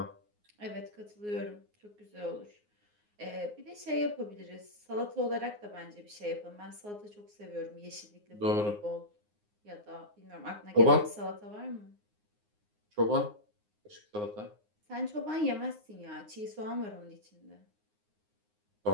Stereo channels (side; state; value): left; late; 9.6 ms